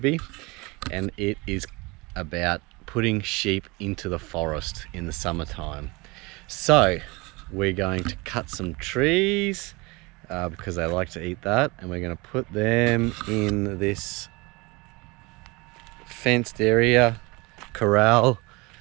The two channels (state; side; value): quieter; left; 25.5 dB